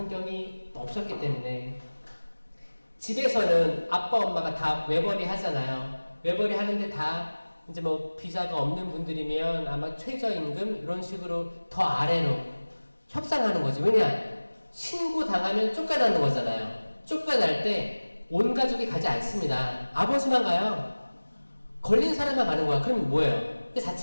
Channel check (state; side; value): inverted; both; correlation -1.00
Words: 없었기 때문에 집에서는 아빠 엄마가 다 외벌이 하잖아요. 외벌이 하는데 다 이제 뭐 비자가 없는 분들이면 아마 최저임금 이런 식으로 더 아래로 협상하는 거죠. 왜냐? 신고 당하면 쫓겨나는 거잖아요. 쫓겨날 때 온 가족이 가지 않습니다. 아버지만 가요. 걸린 사람만 가는 거야. 그럼 뭐예요? 그